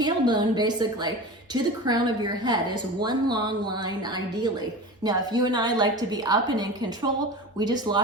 basically to the crown of your head is one long line ideally. Now, if you and I like to be up and in control, we just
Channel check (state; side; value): normal; both; correlation 0.31